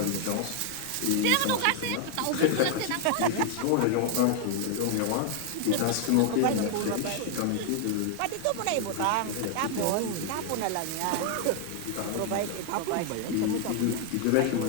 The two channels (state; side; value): different; both; correlation 0.00